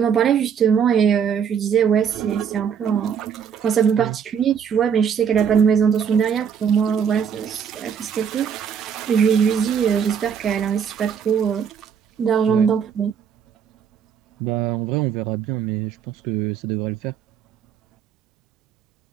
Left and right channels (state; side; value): quieter; left; 7.5 dB